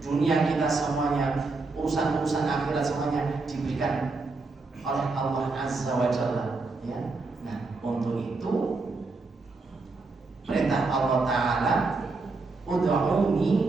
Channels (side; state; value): left; quieter; 3.8 dB